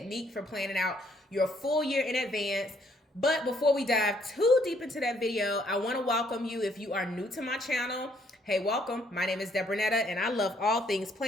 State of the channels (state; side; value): normal; both; correlation 0.67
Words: for planning out your full year in advance. But before we dive too deep into that video, I want to welcome you if you are new to my channel. Hey, welcome. My name is Debronetta and I love all things